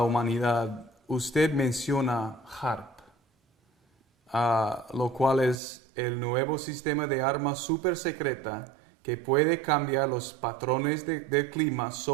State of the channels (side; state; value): left; drops out; at 5.6 s